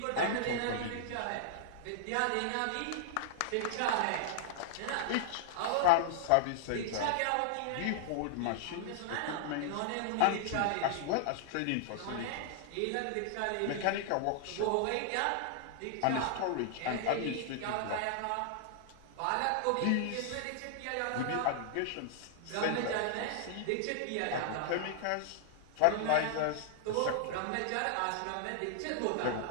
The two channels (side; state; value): both; different; correlation -0.01